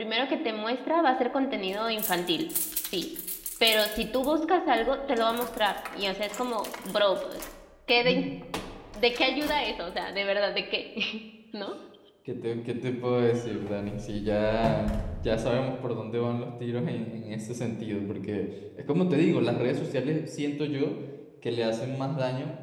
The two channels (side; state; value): both; identical; correlation 1.00